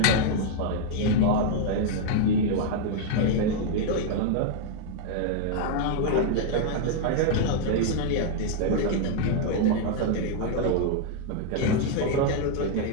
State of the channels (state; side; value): different; both; correlation -0.01